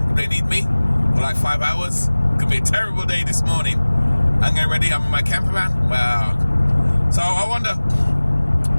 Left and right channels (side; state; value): both; inverted; correlation -1.00